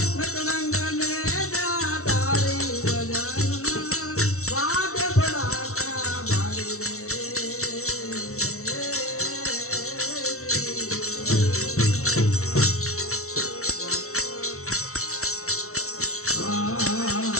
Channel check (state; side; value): late; right; 0.63 ms